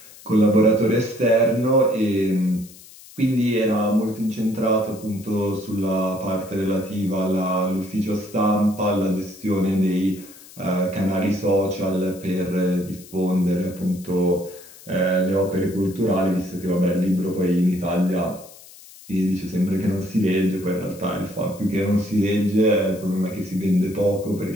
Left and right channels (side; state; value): left; noise; hiss, 20 dB below the sound